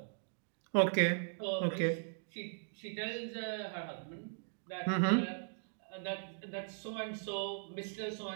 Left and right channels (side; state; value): left; silent; digital silence